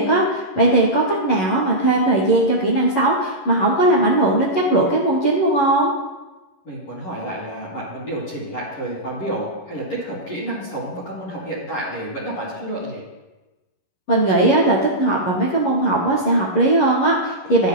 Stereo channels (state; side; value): late; right; 11 ms